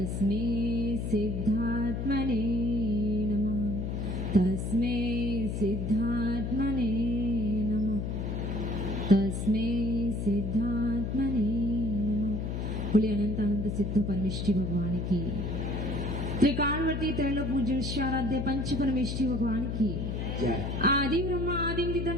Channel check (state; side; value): noise; left; hum, 2 dB below the sound